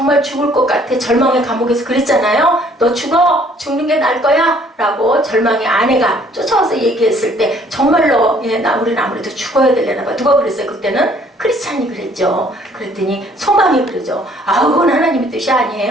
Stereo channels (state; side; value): normal; both; correlation 0.60